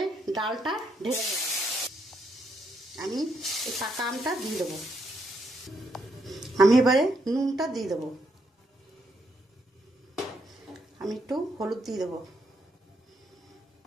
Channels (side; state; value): both; normal; correlation 0.76